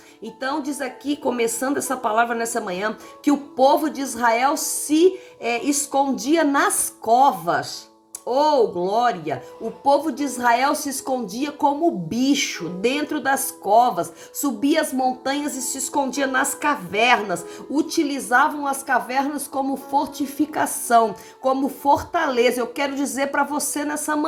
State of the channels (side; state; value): both; identical; correlation 1.00